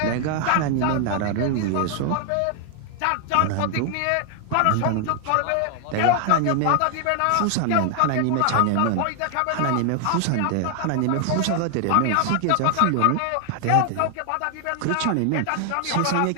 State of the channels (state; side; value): different; both; correlation 0.00